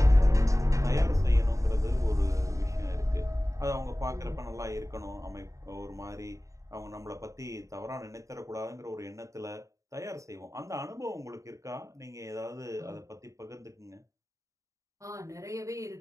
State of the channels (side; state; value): left; late; 0.15 ms